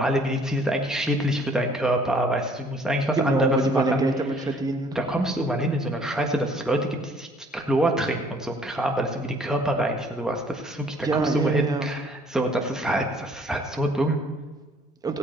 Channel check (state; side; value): normal; both; correlation 0.59